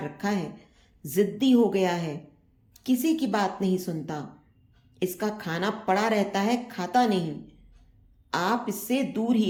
है, जिद्दी हो गया है, किसी की बात नहीं सुनता, इसका खाना पड़ा रहता है, खाता नहीं, आप इससे दूर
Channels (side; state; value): both; identical; correlation 1.00